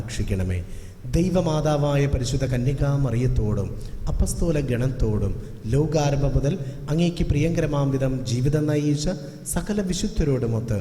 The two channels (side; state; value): both; identical; correlation 1.00